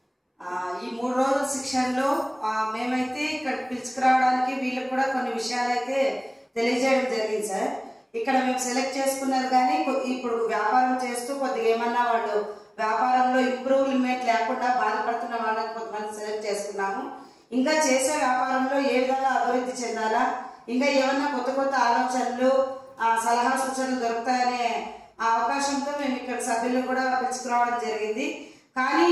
ఈ 3 రోజుల శిక్షణలో మేమైతే ఇక్కడ పిలుచుకురావడానికి వీళ్ళకి కూడా కొన్ని విషయాలు అయితే తెలియజేయడం జరిగింది సార్. ఇక్కడ మేము సెలెక్ట్ చేసుకున్నారు కానీ ఇప్పుడు వ్యాపారం చేస్తూ కొద్దిగా ఏమన్నా వాళ్ళు వ్యాపారంలో ఇంప్రూవ్మెంట్ లేకుండా బాధపడుతున్న వాళ్ళని కొంతమంది సెలెక్ట్ చేసుకున్నాము. ఇంకా చేసే వ్యాపారంలో ఏ విధంగా అభివృద్ధి చెందాలా, ఇంకా ఏమన్నా కొత్త కొత్త ఆలోచనలు సలహా సూచనలు దొరుకుతాయనే అవకాశంతో మేము ఇక్కడ సభ్యులు కూడా పిలుచుకురావడం జరిగింది. కానీ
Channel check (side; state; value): both; identical; correlation 1.00